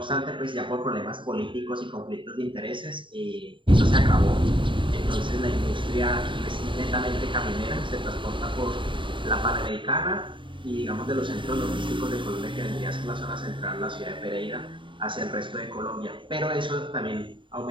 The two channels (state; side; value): late; left; 0.24 ms